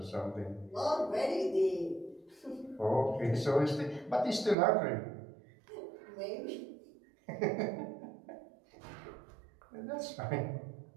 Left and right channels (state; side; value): drops out; left; at 4.5 s